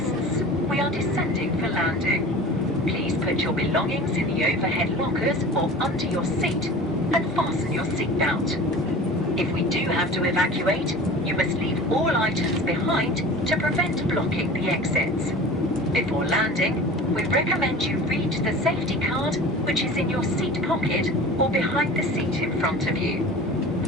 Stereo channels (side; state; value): both; normal; correlation 0.38